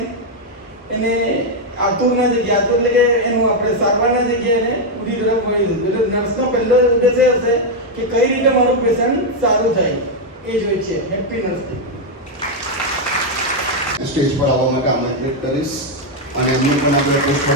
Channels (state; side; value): normal; both; correlation 0.01